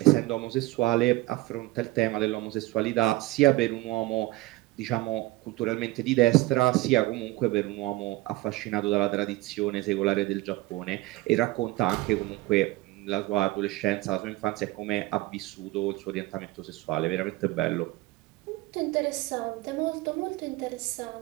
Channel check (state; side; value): quieter; left; 19.4 dB